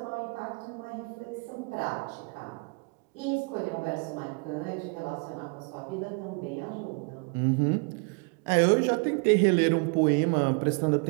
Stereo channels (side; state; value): left; quieter; 33.6 dB